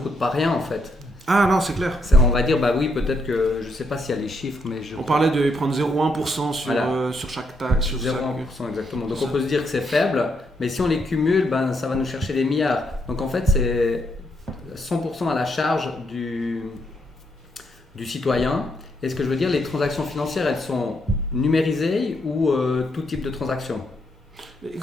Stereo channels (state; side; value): normal; both; correlation 0.76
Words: coûte pas rien en fait. Ah non, c'est clair. On va dire, oui, peut-être que, je ne sais pas s'il y a les chiffres, mais on parlait de prendre 0,1% sur chaque taxe. 0,1% exactement. Donc on peut se dire que c'est faible, mais si on les cumule, ça va nous chercher des milliards. Donc en fait, c'est 100% à la charge du citoyen. Et ce que je veux dire, les transactions financières, elles sont numérisées ou tout type de transactions?